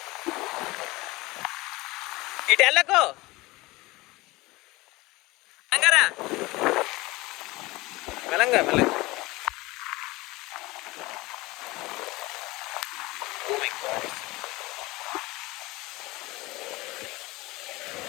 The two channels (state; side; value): quieter; right; 21.4 dB